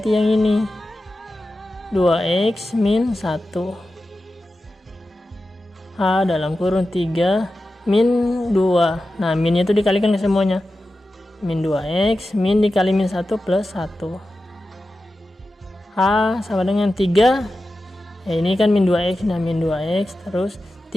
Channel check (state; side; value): normal; both; correlation 0.93